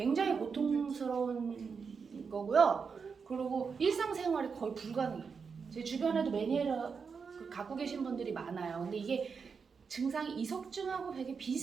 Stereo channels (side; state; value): left; quieter; 5.6 dB